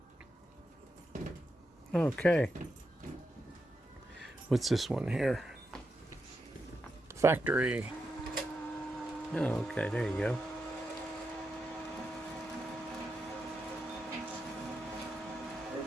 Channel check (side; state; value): both; normal; correlation 0.86